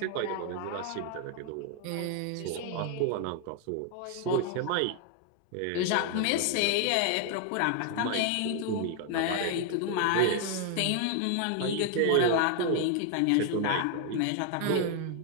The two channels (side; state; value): both; different; correlation 0.00